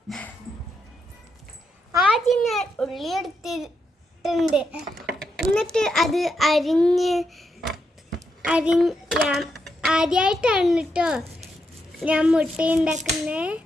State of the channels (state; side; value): normal; both; correlation 0.82